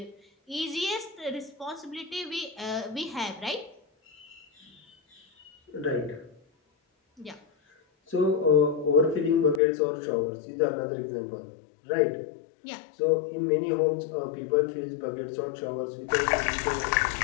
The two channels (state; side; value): drops out; right; at 9.6 s